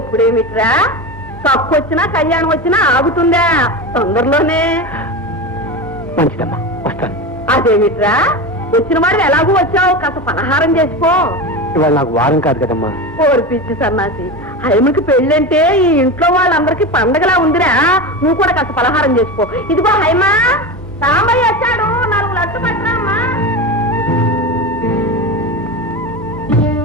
కప్పు వచ్చినా కళ్యాణం వచ్చినా ఆగుతుందా? తొందరలోనే. మంచిదమ్మా, వస్తాను. అదేమిట్రా, వచ్చిన వాడు ఎలాగూ వచ్చావు, కాస్త పలహారం చేసుకో. ఇవాళ నాకు వారం కాదు కదమ్మా. ఓర్పిచ్చి సన్నాసి, హైమకి పెళ్ళంటే ఈ ఇంట్లో వాళ్ళందరికీ పండగలా ఉందిరా. నువ్వు కూడా కాస్త పలహారం చేసుకో. ఇదిగో హైమా, సాంబయ్య వచ్చాడు, 4 లడ్లు పట్టరా అమ్మా.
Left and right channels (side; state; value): both; normal; correlation 0.23